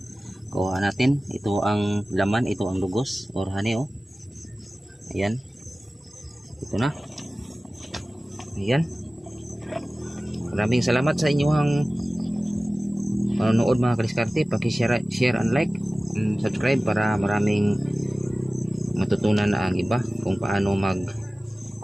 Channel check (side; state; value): both; normal; correlation 0.97